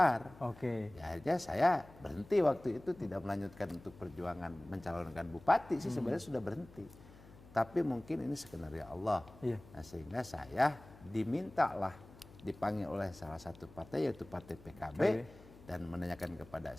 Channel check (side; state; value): left; noise; hum, 21 dB below the sound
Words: Ya akhirnya saya berhenti waktu itu, tidak melanjutkan untuk perjuangan mencalonkan bupati sih sebenarnya sudah berhenti. Tapi mungkin ini skenario Allah. Nah, sehingga saya dimintalah dipanggil oleh salah satu partai yaitu Partai PKB dan menanyakan kepada